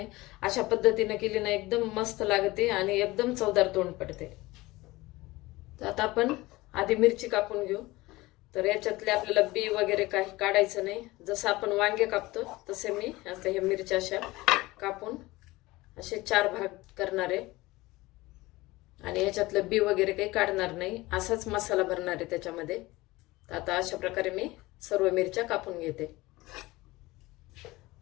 अशा पद्धतीने केली ना एकदम मस्त लागते आणि एकदम चवदार तोंड पडते। तर आता आपण आधी मिरची कापून घेऊ। तर याच्यातले आपल्याला बी वगैरे काही काढायचं नाही। जसं आपण वांगे कापतो तसे मी आता हे मिरच्या अशा कापून असे 4 भाग करणार आहे आणि याच्यातलं बी वगैरे काही काढणार नाही, असाच मसाला भरणार आहे त्याच्यामध्ये। तर आता अशा प्रकारे मी सर्व मिरच्या कापून घेते।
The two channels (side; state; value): right; quieter; 20.1 dB